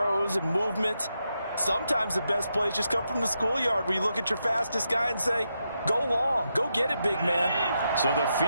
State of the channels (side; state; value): both; inverted; correlation -0.84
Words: and movements. Sometimes the best plays just come from the schoolyard where you look at your fastest guy and say, go long, go get it, big man. So the